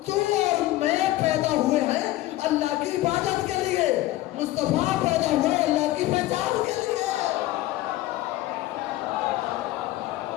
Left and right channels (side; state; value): right; quieter; 16.3 dB